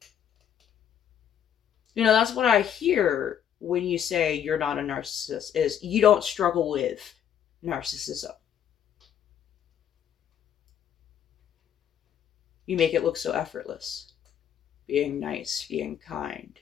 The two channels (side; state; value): right; quieter; 9.3 dB